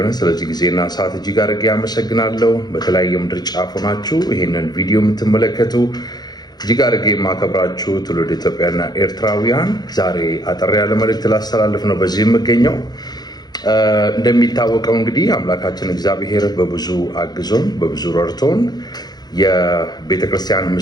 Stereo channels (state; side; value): late; right; 0.19 ms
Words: ስለዚህ ጊዜና ሰዓት እጅግ አድርጌ አመሰግናለሁ። በተለያየ ምድር ጫፍ ሆናችሁ ይህንን ቪዲዮ የምትመለከቱ እጅግ አድርጌ የማከብራችሁ ትውልድ ኢትዮጵያና ኤርትራውያን፣ ዛሬ አጠር ያለ መልእክት ላስተላልፍ ነው በዚህ የምገኘው። እንደሚታወቀው እንግዲህ አምላካችን እግዚአብሔር በብዙ አግዞን በብዙ ረድቶን የቤተክርስቲያን